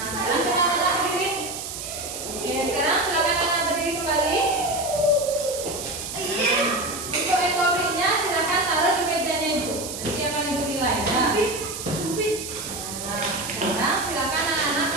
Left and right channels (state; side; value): noise; right; hiss, 7 dB below the sound